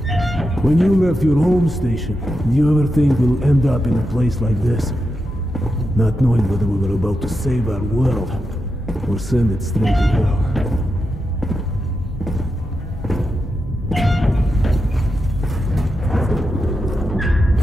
When you left your home station, do you ever think we'll end up in a place like this? Not knowing whether we were about to save our world, or send it straight to hell.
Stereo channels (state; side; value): normal; both; correlation 0.87